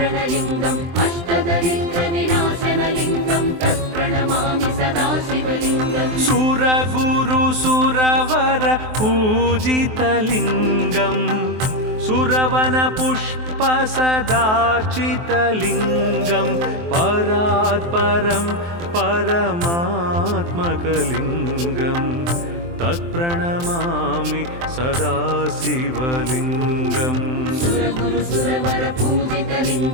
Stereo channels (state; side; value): late; left; 23 ms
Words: अष्टदरिद्रविनाशनलिङ्गं तत्प्रणमामि सदा शिवलिङ्गम् सुरगुरुसुरवर पूजितलिङ्गं सुरवनपुष्पसदार्चितलिङ्गं परात्परं परमात्मकलिङ्गं तत्प्रणमामि सदा शिवलिङ्गम् सुरगुरुसुरवर